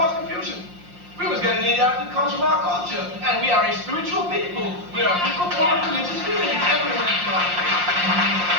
confusion. We must get an ideology that comes from our culture. And we are a spiritual people. We are people full of religious feelings everywhere in life.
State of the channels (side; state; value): left; late; 5.7 ms